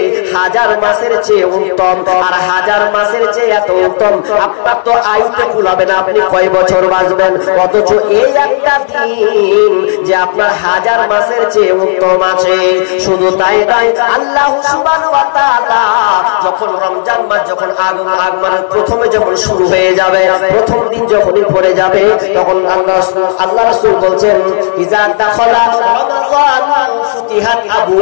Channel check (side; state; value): right; silent; digital silence